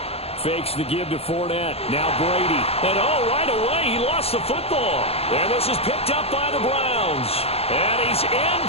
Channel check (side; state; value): right; late; 0.29 ms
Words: Fakes the give to Fournette. Now Brady. And right away, he lost the football. And this is picked up by the Browns. And he's